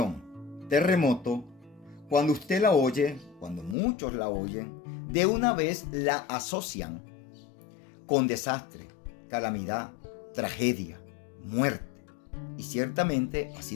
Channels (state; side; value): drops out; right; at 3.8 s